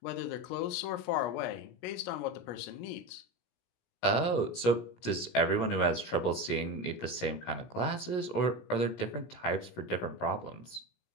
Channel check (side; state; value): right; late; 17 ms